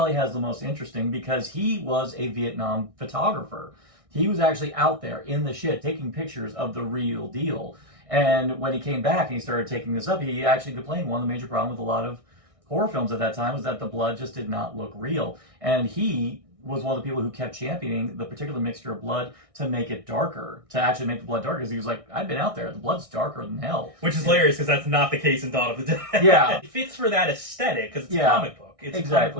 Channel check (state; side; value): late; left; 1.6 ms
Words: has the most interesting because he was a Vietnam photographer. He was actually out there in the shit taking pictures of the real deal. And when he came back and he started taking this up, he actually complained one of the major problems with a lot of horror films at that time was that the blood just did not look real. And he was one of the people who kept championing the particular mixture of blood to make it darker, to actually make the blood darker, because he was like, I've been out there, the blood's darker than hell. Which is hilarious, because that's not the case in Dawn of the Dead. Yeah. It fits for that aesthetic, because it's a comic book. It's exactly. a comic